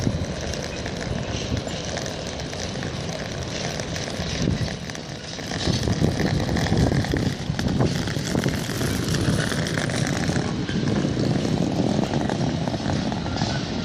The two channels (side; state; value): both; identical; correlation 1.00